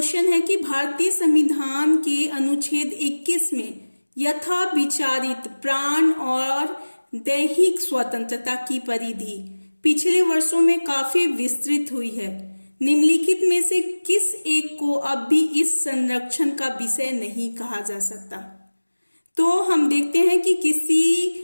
है कि भारतीय संविधान के अनुच्छेद 21 में यथा विचारित प्राण और दैहिक स्वतंत्रता की परिधि पिछले वर्षों में काफी विस्तृत हुई है। निम्नलिखित में से किस एक को अब भी इस संरक्षण का विषय नहीं कहा जा सकता? तो हम देखते हैं कि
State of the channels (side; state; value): both; inverted; correlation -1.00